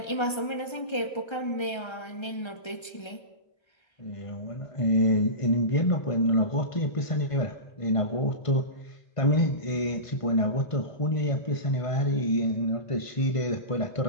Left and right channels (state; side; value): late; right; 1.3 ms